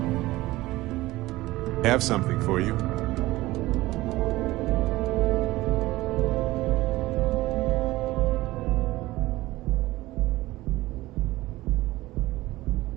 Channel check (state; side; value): quieter; left; 18.2 dB